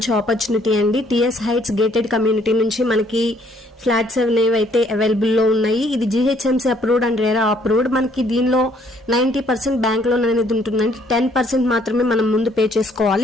ఆపర్చునిటీ అండి. టిఎస్ హైట్స్ గేటెడ్ కమ్యూనిటీ నుంచి మనకి ఫ్లాట్స్ అనేవి అయితే అవైలబుల్ లో ఉన్నాయి. ఇది GHMC approved and RERA approved. మనకి దీనిలో 90% బ్యాంక్ లోన్ అనేది ఉంటుందండి. 10% మాత్రమే మనం ముందు పే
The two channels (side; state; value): both; normal; correlation 0.65